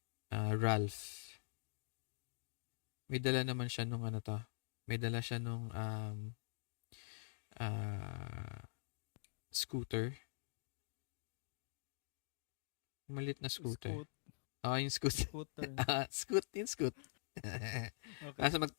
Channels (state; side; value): silent; right; digital silence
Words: Ralph. May dala naman siya may dala siya nung scooter. Malit na scooter. Yung scooter. Scooter. Yung scoot. Okay.